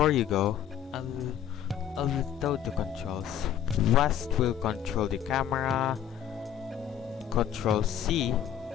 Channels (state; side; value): quieter; right; 9.7 dB